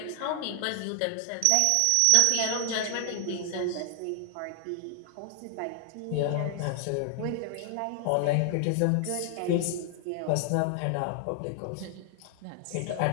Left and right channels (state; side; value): different; both; correlation 0.00